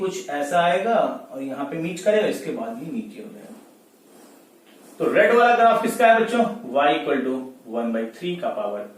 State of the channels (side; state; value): both; identical; correlation 1.00